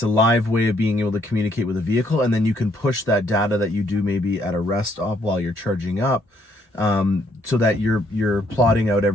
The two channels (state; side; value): normal; both; correlation 0.69